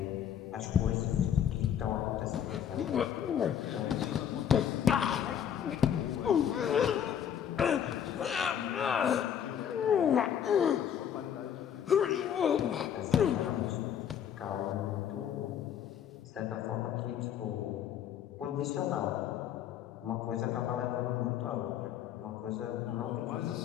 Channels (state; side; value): quieter; right; 9.1 dB